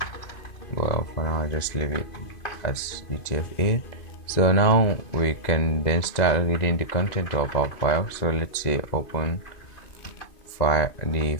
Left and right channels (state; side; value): late; right; 2.5 ms